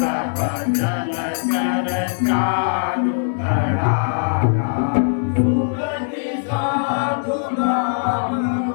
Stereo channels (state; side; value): silent; right; digital silence